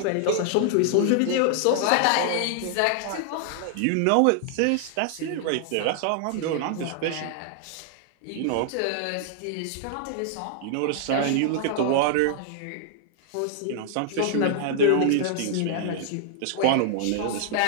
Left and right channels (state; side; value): different; both; correlation -0.01